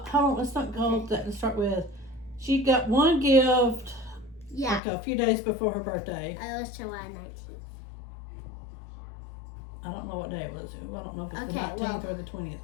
hold on. Let's not go with that. Let's start with she got one gift Yeah. like a few days before her birthday. It was July 19th. I don't know what day it was. I don't know if it's the Okay, 19th well, or the 20th.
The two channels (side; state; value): right; drops out; at 4.8 s